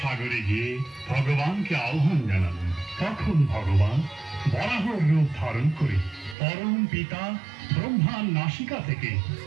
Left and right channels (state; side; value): drops out; left; at 6.4 s